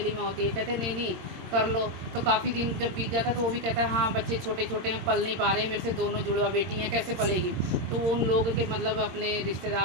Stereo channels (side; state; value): left; late; 22 ms